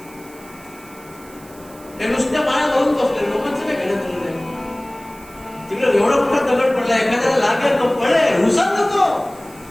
ते नुसत्या माळा घालून बसले, लोकांचं काय घेणं दिलं नाही. तिकडे एवढा मोठा दगड पडला, एखाद्याला लागेल तो पडेल, उसळ नको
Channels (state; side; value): noise; right; hiss, 23 dB below the sound